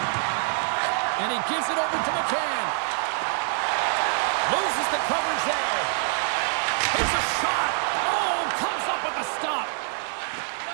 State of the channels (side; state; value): left; silent; 56 dB below the other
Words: And he gives it over to McCann. Loses the coverage there. Here's a shot. Oh, comes up with a stop.